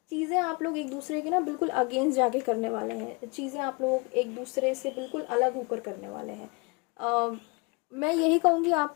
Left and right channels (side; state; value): right; quieter; 29.2 dB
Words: चीज़ें आप लोग एक दूसरे के बिल्कुल अगेंस्ट जाके करने वाले हैं, चीज़ें आप लोग एक दूसरे से बिल्कुल अलग होकर करने वाले हैं। मैं यही कहूँगी